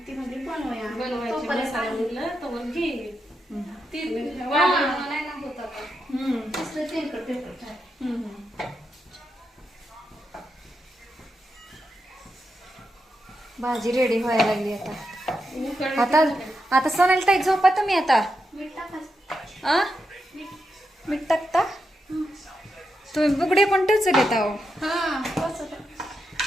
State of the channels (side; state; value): both; normal; correlation 0.85